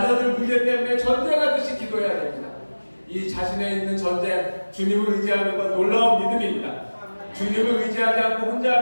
문제 때문에 전쟁하듯이 기도해야 됩니다. 이 자신에 있는 전쟁, 주님을 의지하는 건 놀라운 믿음입니다. 주님을 의지하지 않고 혼자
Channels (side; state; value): both; inverted; correlation -1.00